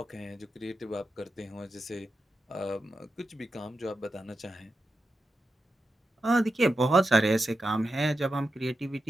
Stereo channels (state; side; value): normal; both; correlation 0.89